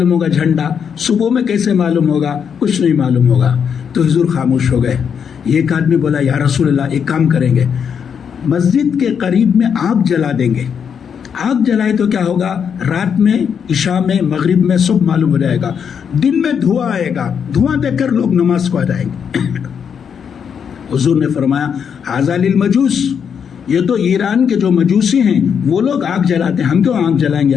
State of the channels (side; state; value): right; quieter; 7.3 dB